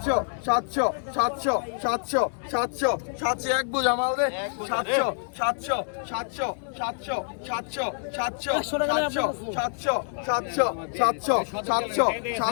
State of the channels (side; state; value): right; silent; digital silence